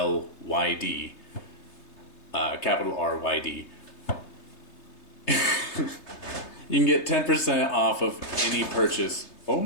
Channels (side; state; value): right; late; 3.3 ms